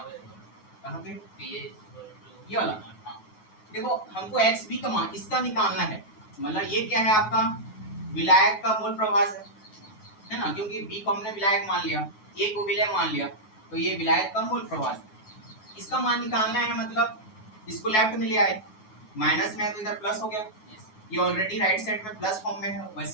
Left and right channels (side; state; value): right; late; 9.4 ms